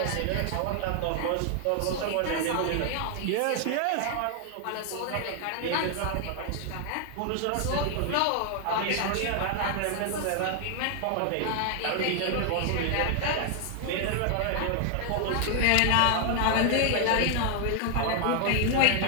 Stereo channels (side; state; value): both; different; correlation 0.00